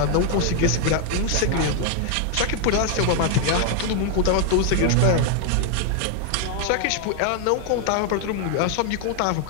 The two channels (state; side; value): different; both; correlation 0.00